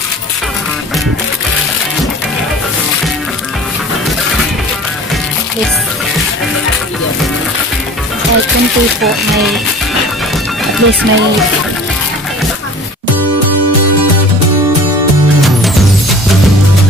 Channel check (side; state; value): both; normal; correlation 0.43